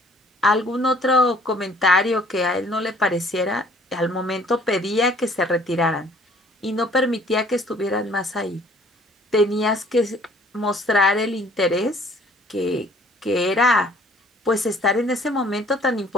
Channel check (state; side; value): normal; both; correlation 0.57